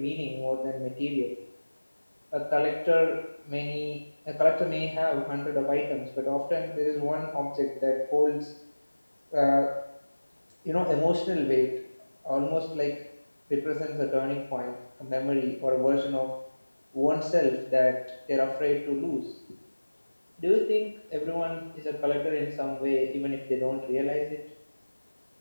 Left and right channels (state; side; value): inverted; both; correlation -1.00